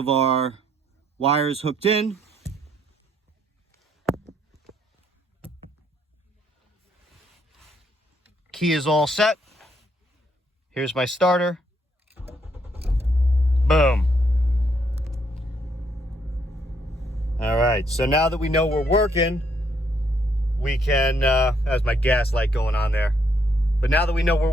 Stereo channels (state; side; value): normal; both; correlation 0.72